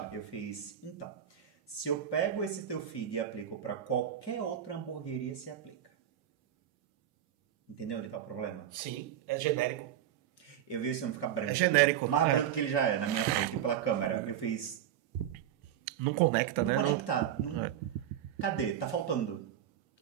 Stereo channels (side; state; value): left; quieter; 10.4 dB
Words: Eu fiz, então, se eu pego esse teu feed e aplico para qualquer outra hamburgueria, se aplica. Entendeu onde tá o problema? Sim, é genérico. Eu vi esse homem ficar branco. É genérico, Mais né? branco que ele já é, na minha frente, pela câmera. Eu fiz... Não conecta, Não né? conecta. Não... É. Cadê? Tá faltando.